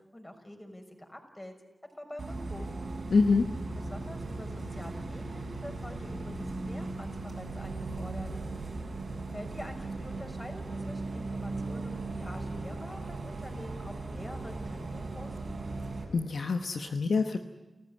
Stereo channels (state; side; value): normal; both; correlation 0.91